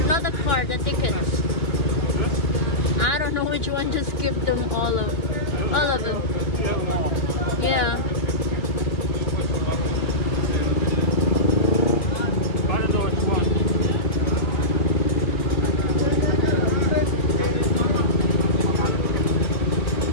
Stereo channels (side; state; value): right; late; 2.9 ms